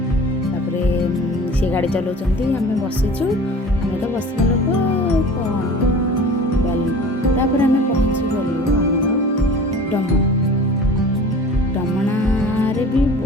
सी गाड़ी चलाउंट आम बसीचु आम तो बसवा लोक कौन आम पहुँची गलु डमणा डमणारे भी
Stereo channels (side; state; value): both; normal; correlation 0.41